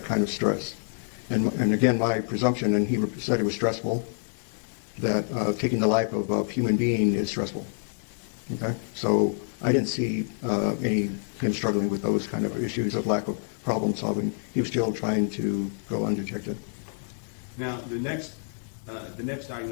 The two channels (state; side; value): silent; right; digital silence